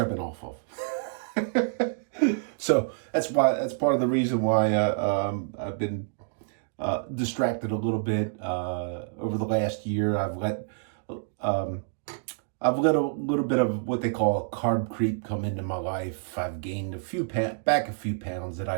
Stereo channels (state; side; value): silent; left; digital silence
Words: been off of. So that's part of the reason why I've been distracted a little bit over the last year. I've let a little bit of what they call carb creep come into my life. I've gained a few pounds that